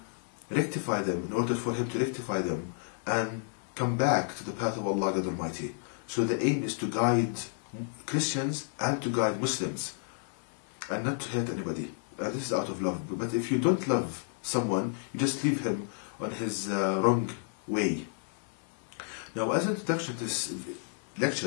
rectify them, in order for him to rectify them and come back to the path of Allah God Almighty. So the aim is to guide Christians and to guide Muslims and not to hurt anybody. And this is out of love. But if you don't love someone, you just leave him on his wrong way. Now, as an introduction to this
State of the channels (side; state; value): right; silent; 57 dB below the other